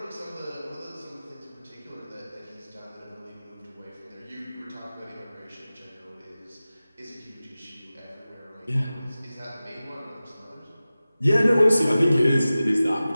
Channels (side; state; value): both; inverted; correlation -0.96